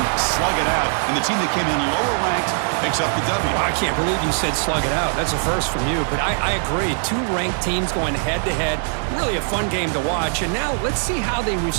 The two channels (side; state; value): left; silent; 65 dB below the other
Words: slug it out, and the team that came in lower ranked picks up the W. Well, I can't believe you said slug it out. That's a first from you, but I agree. 2 ranked teams going head-to-head. Really a fun game to watch, and now let's see how they